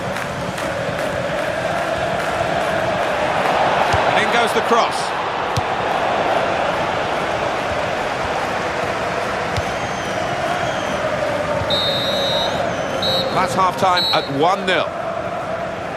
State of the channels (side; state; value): both; identical; correlation 1.00